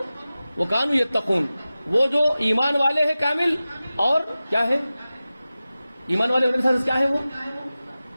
وکانوا یتقون. وہ جو ایمان والے ہیں کامل, اور کیا ہے ایمان والے ہونے سے کیا ہے؟ وہ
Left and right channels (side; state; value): both; inverted; correlation -0.96